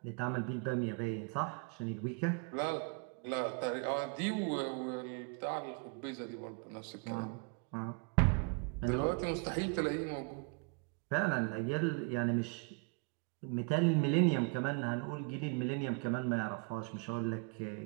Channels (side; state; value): left; quieter; 32.7 dB